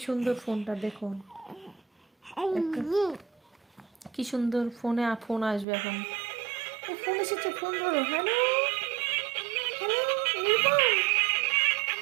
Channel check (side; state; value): left; drops out; at 5.7 s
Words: সুন্দর ফোনটা দেখুন, কি সুন্দর ফোনে ফোন আসবে এখন। ফোন এসেছে, ফোন ধরো। Hello, hello Nirupam,